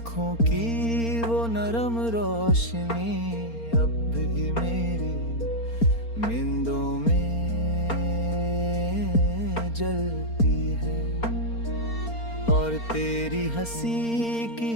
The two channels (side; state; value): right; late; 4.3 ms